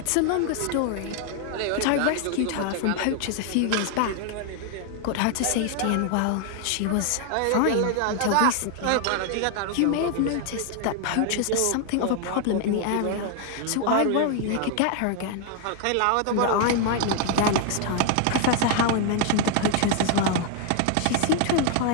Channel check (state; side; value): different; both; correlation 0.00